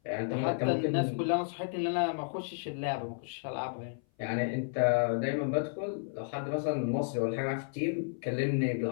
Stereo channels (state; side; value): silent; right; 56 dB below the other